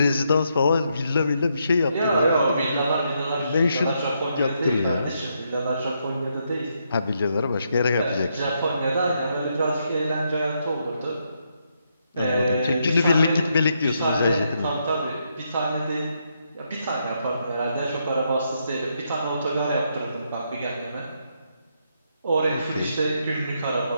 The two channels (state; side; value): inverted; both; correlation -0.79